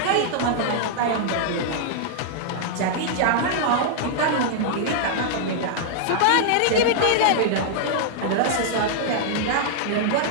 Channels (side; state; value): both; different; correlation -0.01